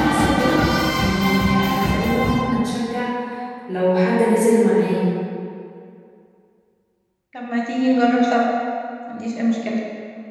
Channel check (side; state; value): both; identical; correlation 1.00